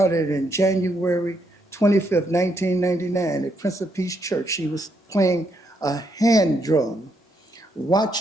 in January 25th, 1999 at Prince of Peace Church. She was playing a hand drum,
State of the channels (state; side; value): normal; both; correlation 0.76